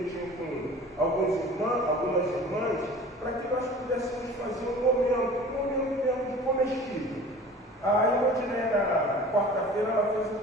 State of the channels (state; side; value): normal; both; correlation 0.42